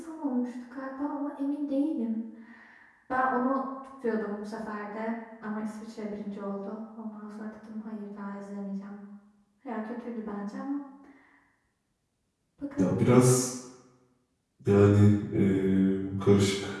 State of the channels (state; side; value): identical; both; correlation 1.00